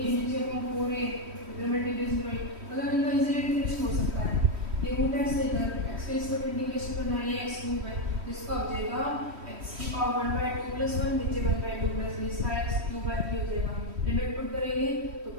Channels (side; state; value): left; late; 3.1 ms